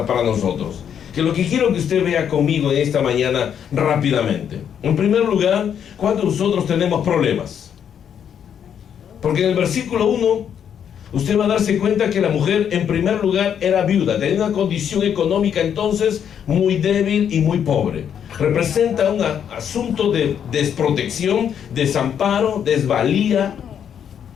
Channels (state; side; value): quieter; right; 8.5 dB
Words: para nosotros, que lo que quiero que usted vea conmigo en esta mañana rápidamente. En primer lugar, cuando nosotros tenemos problemas, porque en el versículo 1 usted va a darse cuenta que la mujer en primer lugar era viuda, tenía una condición económica entonces muy débil y muy pobre. Representa un asunto de desprotección, desamparo, desvalía.